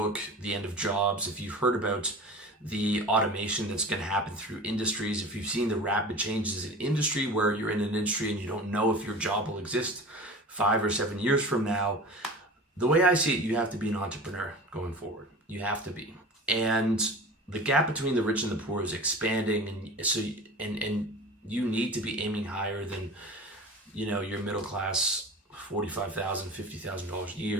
The End of Jobs, if you've heard about the automation that's going to happen through industries, if you've seen the rapid changes in industry, where you're in an industry and you don't know if your job will exist 5 or 7 years from now, the way I see it, you have to be an entrepreneur going forward. You have to be. And the gap between the rich and the poor is expanding, and so and you need to be aiming higher than, you know, your middle class $45,000, $50,000 a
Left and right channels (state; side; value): normal; both; correlation 0.36